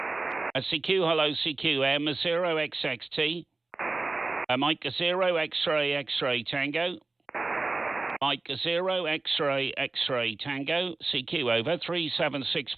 CQ, hello, CQ, M0XXT. Mike 0 X-ray X-ray Tango. Mike 0 X-ray X-ray Tango. CQ, over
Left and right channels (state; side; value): quieter; left; 3.4 dB